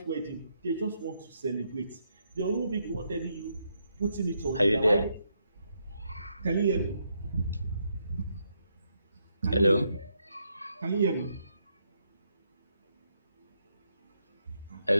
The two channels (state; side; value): inverted; both; correlation -0.78